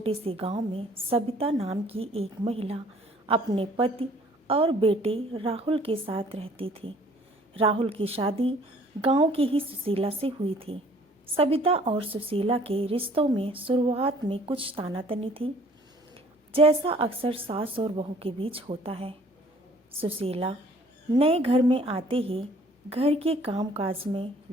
से गांव में सबिता नाम की एक महिला अपने पति और बेटे राहुल के साथ रहती थी। राहुल की शादी गांव की ही सुशीला से हुई थी। सबिता और सुशीला के रिश्तों में शुरुआत में कुछ तानातनी थी, जैसा अक्सर सास और बहू के बीच होता है। सुशीला नए घर में आते ही घर के कामकाज में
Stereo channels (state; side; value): normal; both; correlation 0.56